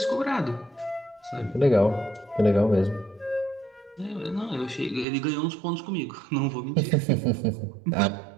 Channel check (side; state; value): left; drops out; at 5.1 s